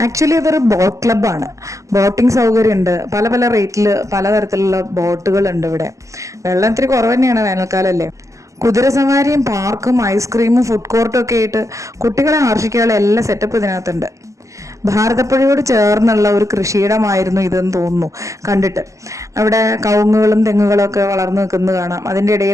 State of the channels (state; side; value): late; left; 0.16 ms